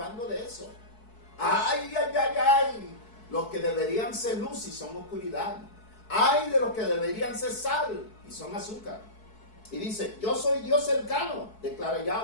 de eso. ¡Ay, ay, ay, ay! Los que deberían ser luz y son oscuridad. ¡Ay de los que deberían ser sal y son azúcar! Y dice, yo soy Dios cercano, declara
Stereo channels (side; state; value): right; late; 4.6 ms